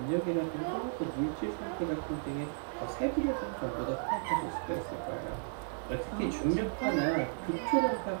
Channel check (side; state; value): left; silent; 55 dB below the other